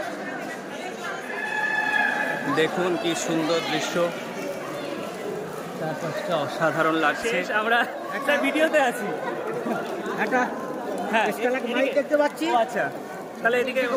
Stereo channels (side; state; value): both; identical; correlation 1.00